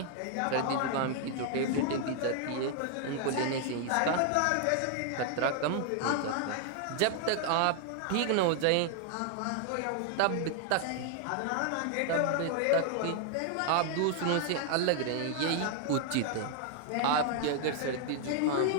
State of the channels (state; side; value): different; both; correlation 0.00